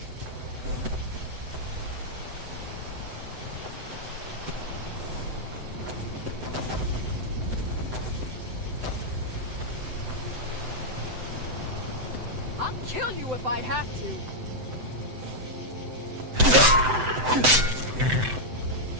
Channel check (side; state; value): left; late; 7.8 ms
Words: kill you if I have to.